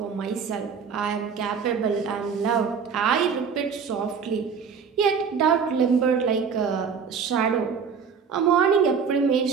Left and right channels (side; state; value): left; quieter; 6.3 dB